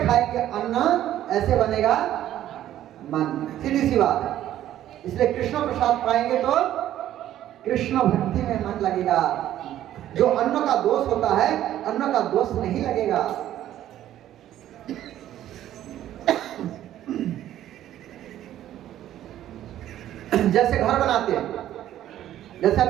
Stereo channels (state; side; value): quieter; left; 12.4 dB